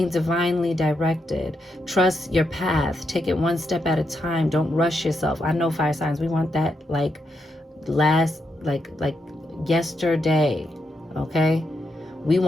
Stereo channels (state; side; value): normal; both; correlation 0.82